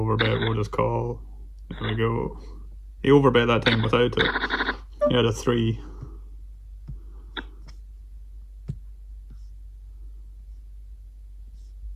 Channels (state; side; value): identical; both; correlation 1.00